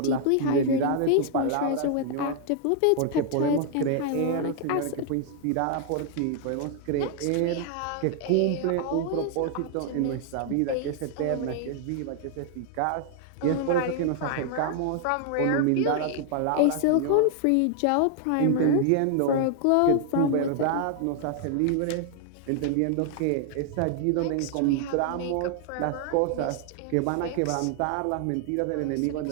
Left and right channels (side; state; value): both; different; correlation 0.00